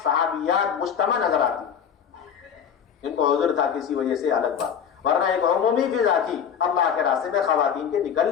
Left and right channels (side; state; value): right; quieter; 7.9 dB